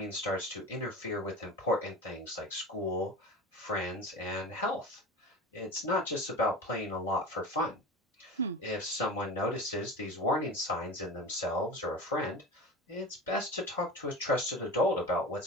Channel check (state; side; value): normal; both; correlation 0.31